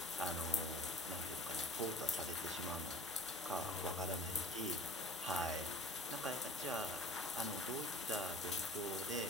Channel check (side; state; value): both; normal; correlation 0.44